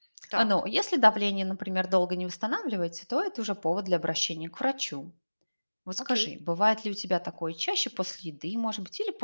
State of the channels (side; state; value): both; inverted; correlation -1.00